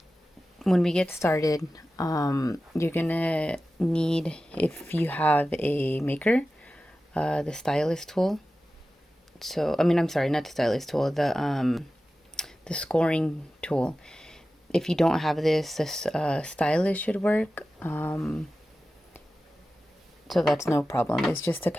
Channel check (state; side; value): normal; both; correlation 0.94